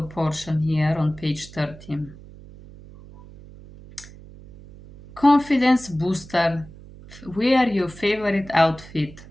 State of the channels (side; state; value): right; noise; hum, 19 dB below the sound